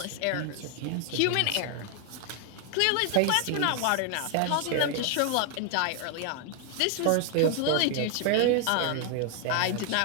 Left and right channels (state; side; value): different; both; correlation 0.00